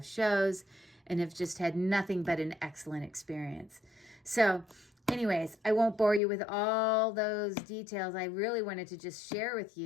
shows, and have just had nothing but an excellent experience. So anyways, I won't bore you with all those details. I really wanted to just share with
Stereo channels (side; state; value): right; drops out; at 6.2 s